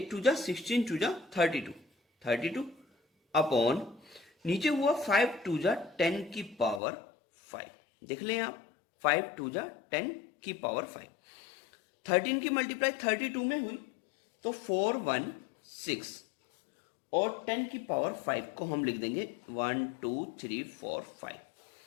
2 जा 16 2 जा 32 अपॉन नीचे हुआ 5 2 जा 10 की पावर 5। देख लें आप, 5 2 जा 10 की पावर 5। 13 की मल्टीप्लाई 32 में हुई तो 4 1 6, और 10 की पावर 5 को हम लिख देंगे 1 2 3 4 5।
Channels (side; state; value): right; drops out; at 6.8 s